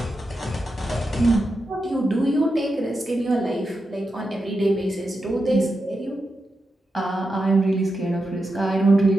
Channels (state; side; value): normal; both; correlation 0.88